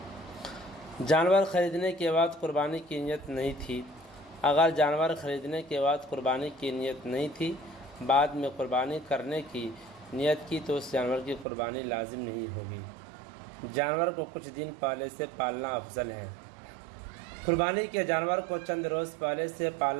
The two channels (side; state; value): left; drops out; at 11.5 s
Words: جانور خریدنے کے بعد قربانی کی نیت نہیں تھی۔ اگر جانور خریدنے کے بعد قربانی کی نیت نہیں تھی، بعد میں قربانی کرنے کی نیت کی تو اس جانور کی قربانی لازم نہیں ہوگی۔ جانور کو کچھ دن پہلے سے پالنا افضل ہے۔ قربانی کے جانور کو چند روز پہلے سے